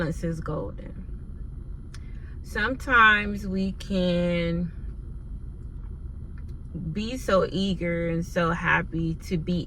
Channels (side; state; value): both; identical; correlation 1.00